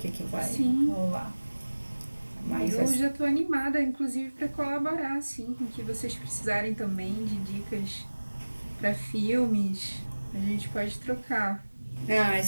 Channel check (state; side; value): inverted; both; correlation -1.00